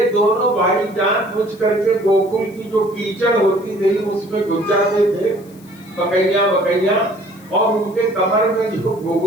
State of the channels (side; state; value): left; noise; hiss, 27 dB below the sound